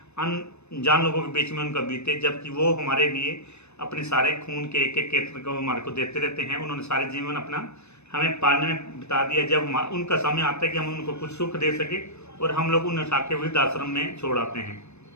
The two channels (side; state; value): right; late; 0.81 ms